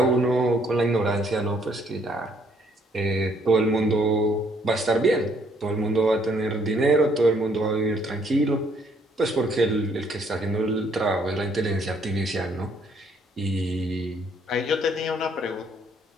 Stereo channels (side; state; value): both; normal; correlation 0.66